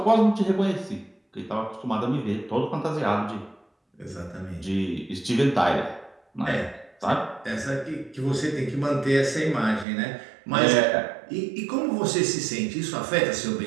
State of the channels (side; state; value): left; drops out; at 9.9 s